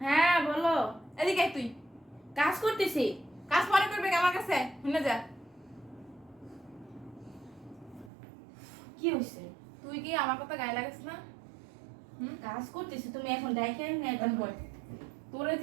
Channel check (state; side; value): drops out; left; at 8.1 s